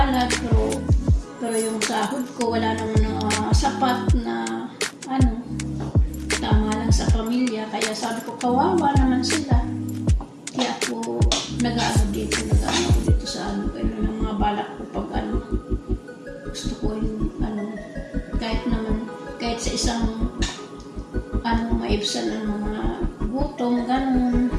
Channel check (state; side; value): identical; both; correlation 1.00